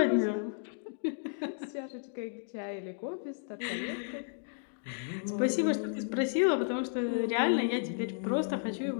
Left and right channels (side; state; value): right; silent; digital silence